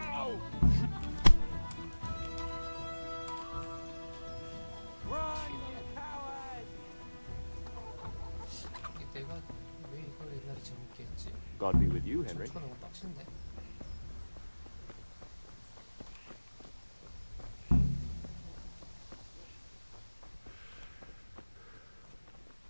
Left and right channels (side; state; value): both; inverted; correlation -1.00